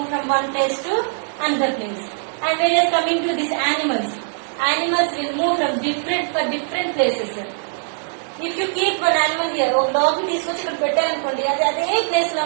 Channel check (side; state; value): left; silent; 59 dB below the other